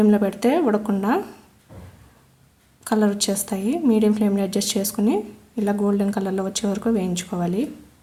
పెడితే ఉడకకుండా కలర్ వచ్చేస్తాయి. మీడియం ఫ్లేమ్లో అడ్జస్ట్ చేసుకుని ఇలా గోల్డెన్ కలర్లో వచ్చే వరకు వేయించుకోవాలి.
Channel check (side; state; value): both; identical; correlation 1.00